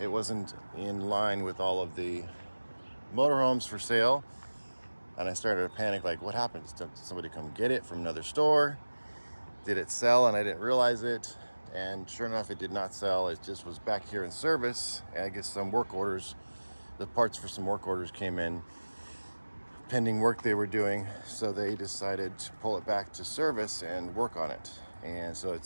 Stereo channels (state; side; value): inverted; both; correlation -1.00